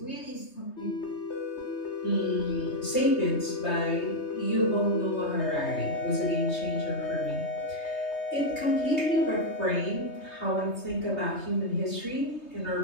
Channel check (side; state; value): right; late; 3.2 ms